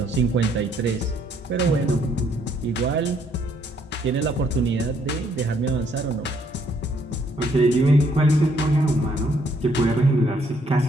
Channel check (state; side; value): normal; both; correlation 0.68